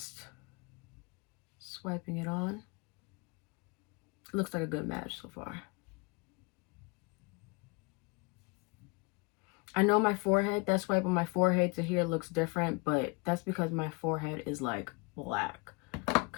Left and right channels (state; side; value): quieter; right; 29.1 dB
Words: swiping it on. It looks like a good match so far. I know my forehead, that swipe on my forehead to here looks different, but that's because my forehead is like black.